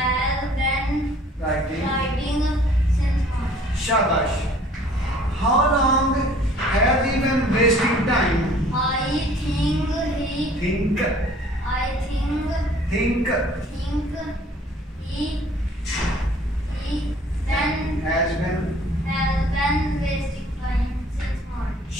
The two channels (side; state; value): both; normal; correlation 0.54